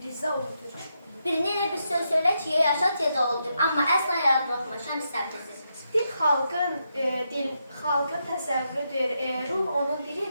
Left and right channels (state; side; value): inverted; both; correlation -0.83